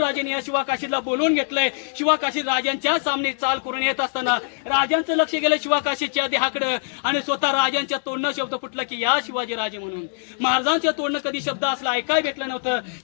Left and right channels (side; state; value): right; silent; 63 dB below the other